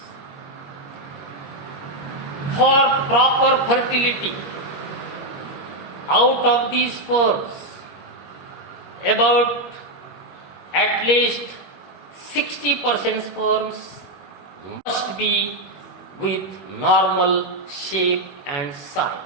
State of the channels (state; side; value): late; right; 21 ms